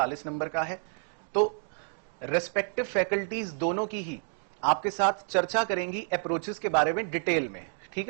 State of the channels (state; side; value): silent; left; 58 dB below the other